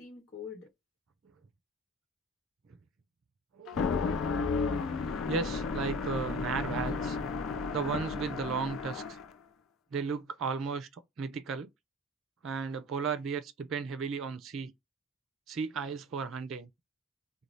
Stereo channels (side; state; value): both; normal; correlation 0.39